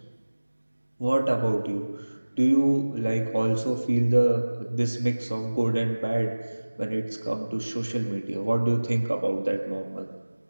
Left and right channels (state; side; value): inverted; both; correlation -1.00